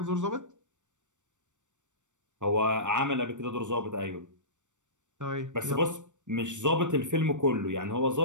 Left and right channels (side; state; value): left; late; 0.85 ms